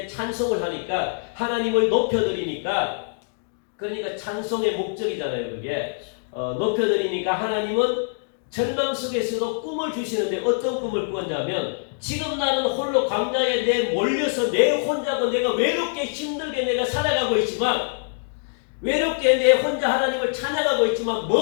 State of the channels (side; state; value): right; silent; digital silence